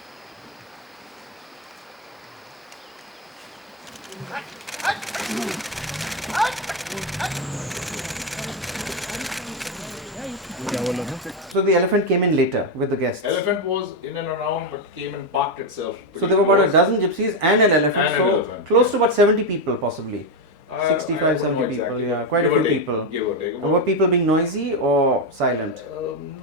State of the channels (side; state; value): both; normal; correlation 0.07